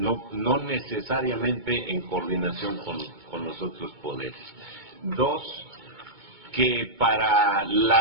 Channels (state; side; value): late; left; 2.2 ms